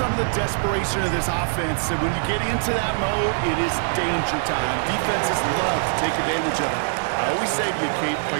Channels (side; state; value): left; silent; digital silence